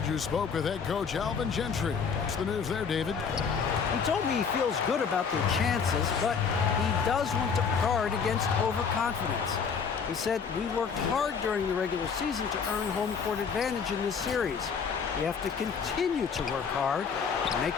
who spoke with head coach Alvin Gentry. What's the news there, David? He told me he feels good about their chances, but he does want to guard against overconfidence. He said, "We worked hard during the regular season to earn home court advantage in this series. We have to continue to work hard and make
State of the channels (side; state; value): right; quieter; 6.1 dB